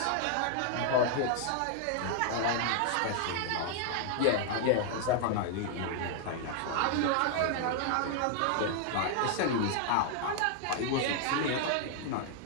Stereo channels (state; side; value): different; both; correlation 0.00